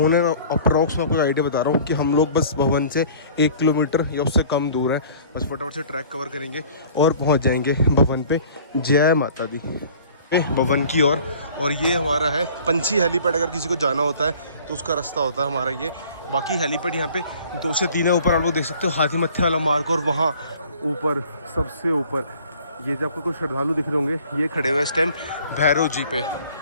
एंड अप्रॉक्स में आपको आइडिया बता रहा हूँ कि हम लोग बस भवन से 1 किलोमीटर या उससे कम दूर है। बस फटाफट से ट्रैक कवर करेंगे और पहुँच जाएंगे भवन पे। जय माता दी। भवन की ओर, और ये हमारा है पंछी हेलीपैड। अगर किसी को जाना होता है तो उसका रास्ता होता है हमारा ये। बाकी हेलीपैड यहाँ पे 2 से 3 है। ऊपर आप लोग देख सकते हो हाथी मत्थे वाला मार्ग, और वहाँ ऊपर सबसे ऊपर ये जो आपको कुछ श्रद्धालु दिख रहे होंगे, ये खड़े हुए इस टाइम भैरव जी पे।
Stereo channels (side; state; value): both; inverted; correlation -0.50